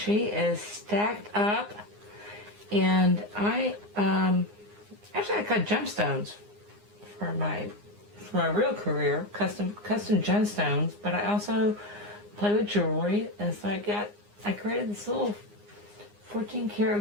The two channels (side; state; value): left; late; 9.7 ms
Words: is stacked up, and I cut gemstones for my real career, custom gemstones, but I also play with jewelry, and so I created this little 14